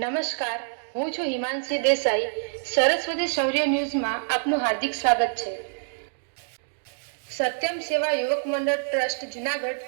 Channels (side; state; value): left; silent; digital silence